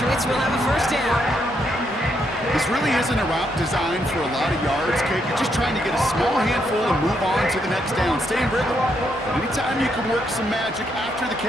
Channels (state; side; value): normal; both; correlation 0.77